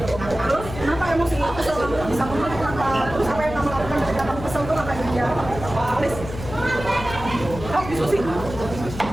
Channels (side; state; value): left; noise; hum, 10 dB below the sound